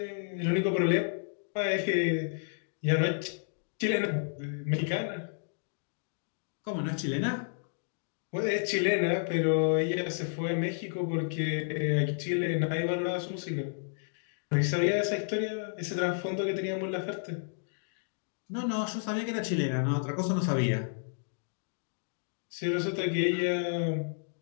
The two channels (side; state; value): right; silent; digital silence